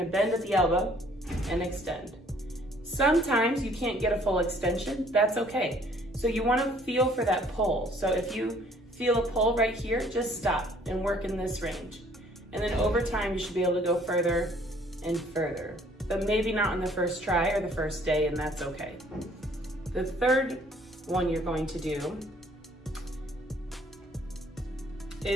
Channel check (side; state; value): both; normal; correlation 0.59